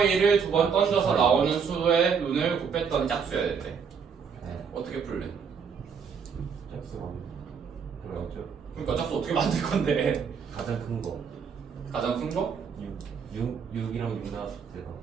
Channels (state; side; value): quieter; left; 6.3 dB